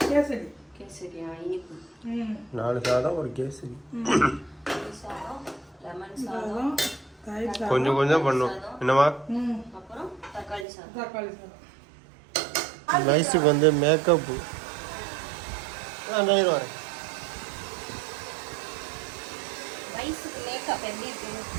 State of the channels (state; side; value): drops out; left; at 10.7 s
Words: கேசரி. கேசரியா இனிப்பு. 4 சாதம் ஒரு கேசரி. லெமன் சாதம் கொஞ்சம் கொஞ்சம் பண்ணும். என்னவா? அப்புறம் தக்காளி சாதம். தக்காளி சாதம். வயசுக்கு வந்து மேக்கப்பு வரேன். வயசுக்கு மேக்கப் எப்படி இருக்கு